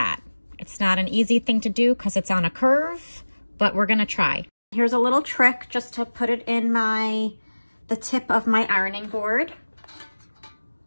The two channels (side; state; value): both; inverted; correlation -1.00